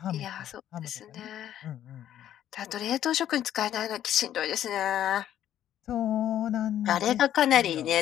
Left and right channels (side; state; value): right; quieter; 11.3 dB